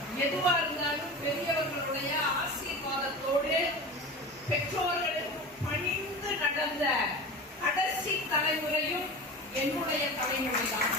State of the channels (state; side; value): normal; both; correlation 0.30